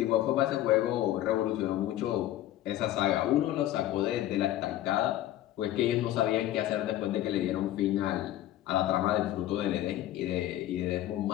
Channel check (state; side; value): quieter; right; 13.6 dB